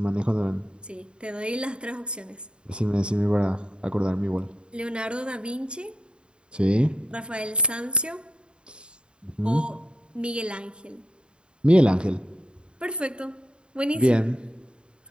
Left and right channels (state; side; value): late; left; 0.052 ms